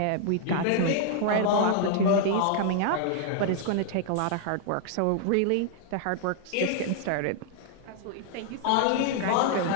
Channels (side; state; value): both; different; correlation 0.00